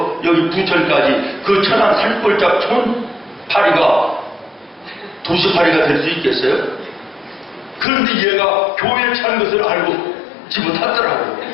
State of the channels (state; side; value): drops out; right; at 7.9 s